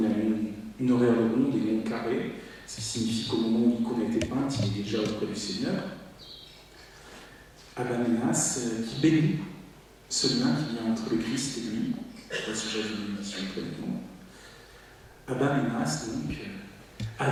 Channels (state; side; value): identical; both; correlation 1.00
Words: a une horaire ronde et non carrée, ce qui signifie qu'au moment où l'icône a été peinte, il est déjà auprès du Seigneur. Abba Ménas qui bénit ce lien qui vient entre le Christ et lui, au sujet de l'émission précédente. Abba Ménas, donc, a